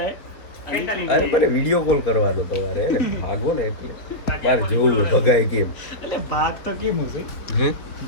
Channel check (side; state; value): right; late; 4.0 ms